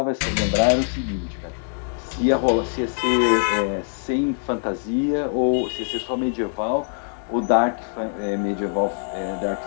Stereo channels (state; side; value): silent; right; digital silence